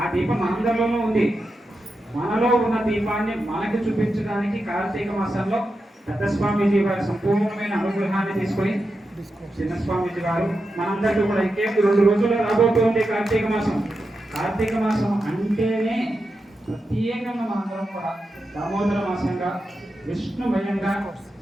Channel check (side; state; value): both; normal; correlation 0.88